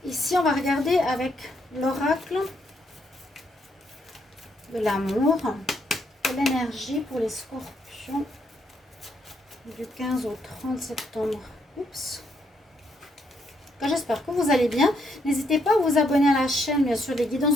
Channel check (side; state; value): both; normal; correlation 0.75